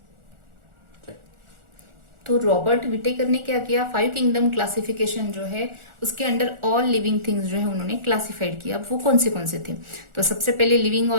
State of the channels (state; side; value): late; left; 1.4 ms